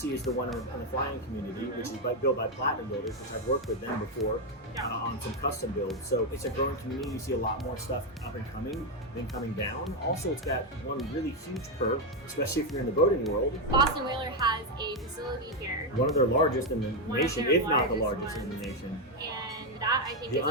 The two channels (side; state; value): both; normal; correlation 0.05